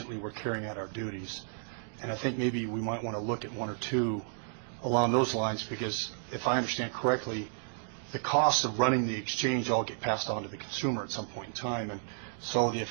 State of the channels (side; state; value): left; silent; digital silence